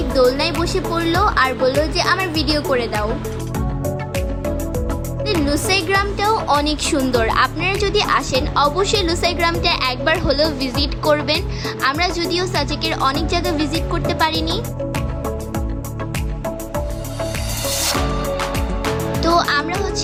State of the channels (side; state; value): both; identical; correlation 1.00